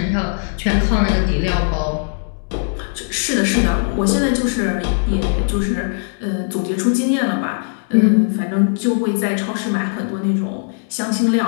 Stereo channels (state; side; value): silent; right; 67 dB below the other